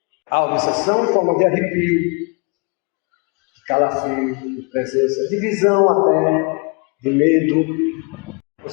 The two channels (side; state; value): right; quieter; 33.0 dB